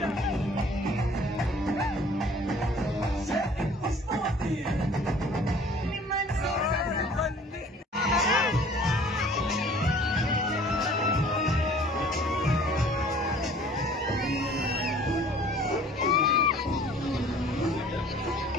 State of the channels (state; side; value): normal; both; correlation 0.51